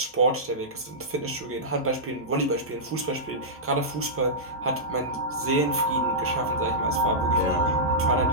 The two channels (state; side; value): normal; both; correlation -0.13